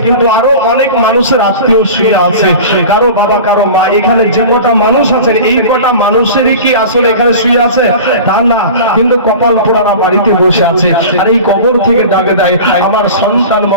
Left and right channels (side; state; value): both; inverted; correlation -0.36